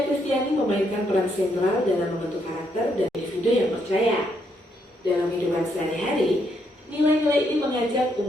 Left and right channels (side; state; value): both; normal; correlation 0.75